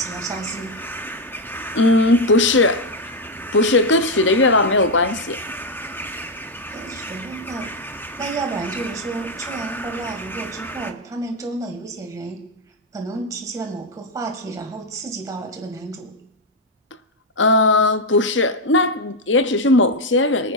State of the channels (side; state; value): both; normal; correlation 0.05